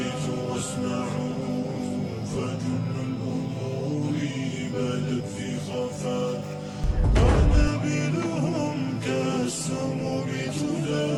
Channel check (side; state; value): both; identical; correlation 1.00